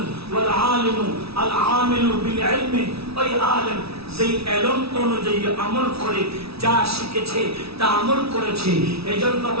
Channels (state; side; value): late; left; 0.77 ms